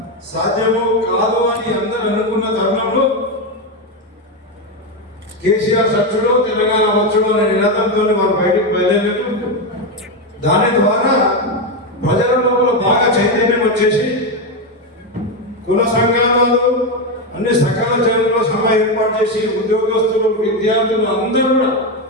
సాధ్యము కాదు అని అందరూ అనుకున్న తరుణంలో కేసీఆర్ సచ్చుడు తెలంగాణ వచ్చుడు అనే నినాదంతో వారు బయటకు బయలుదేరారు. దాని ద్వారా ప్రజల లోపల బాగా చైతన్యం వచ్చేసి కుల సంఘాలు అన్ని సకల చర్యల్లో సభ ఏర్పాటు చేసి ఉద్యోగస్తులు విద్యార్థులు అందరూ కూడా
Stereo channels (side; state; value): both; normal; correlation 0.09